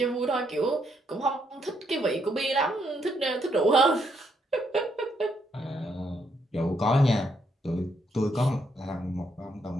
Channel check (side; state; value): both; normal; correlation 0.75